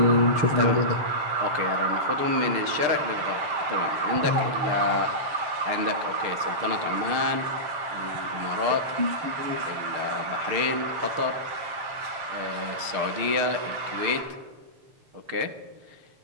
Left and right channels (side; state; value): left; late; 6.6 ms